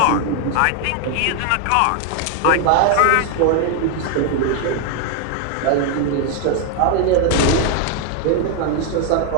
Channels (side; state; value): both; different; correlation 0.00